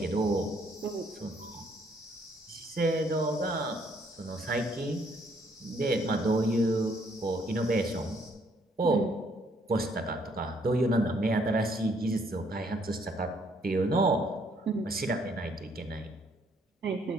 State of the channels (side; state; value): both; normal; correlation 0.67